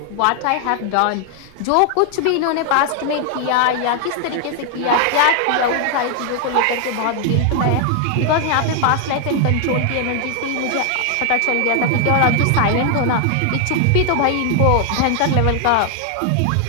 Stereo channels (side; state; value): both; different; correlation 0.00